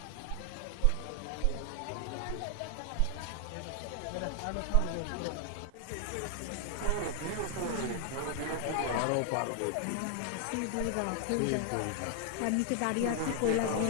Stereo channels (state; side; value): different; both; correlation 0.00